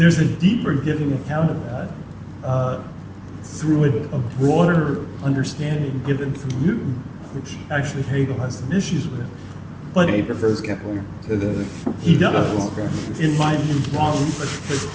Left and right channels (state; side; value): identical; both; correlation 1.00